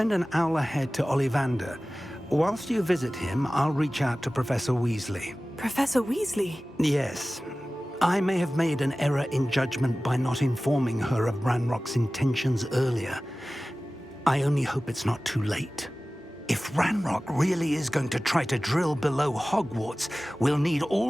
an owl ahead to Ollivander. Whilst you visit him, I'll reach out to Professor Weasley. Professor Weasley? Yes. I may have made an error in judgment by not informing her of Ranrock's intentions earlier. I only hope it's not too late. If Ranrock really is going to try to drill below Hogwarts, we'll need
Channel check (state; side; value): normal; both; correlation 0.97